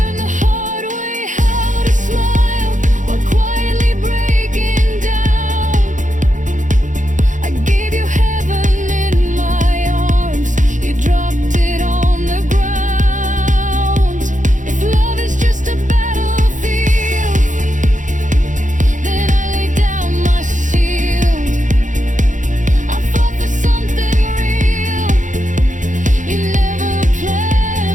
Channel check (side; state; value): left; late; 0.37 ms